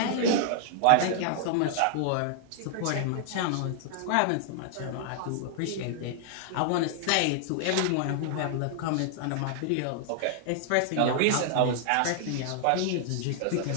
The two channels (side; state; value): both; different; correlation 0.00